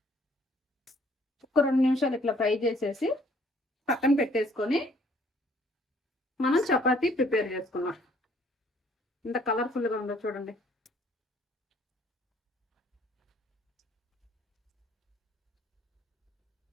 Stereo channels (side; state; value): both; normal; correlation 0.61